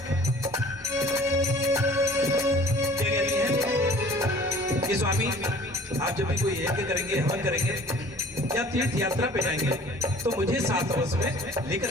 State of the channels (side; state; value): both; normal; correlation 0.49